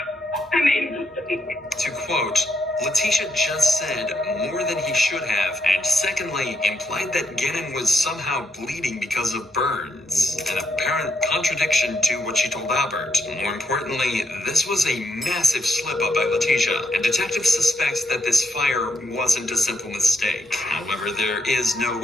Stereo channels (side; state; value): both; normal; correlation 0.78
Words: I made a mistake. To quote, Letitia just said more than he should have, and secondly, implied that Gannon was somehow bleeding because of burns. An apparent contradiction to what she told Albert. More importantly, this was a massive slip-up by Letitia, and detectives suspect that this fire wasn't a simple mistake. However, there is no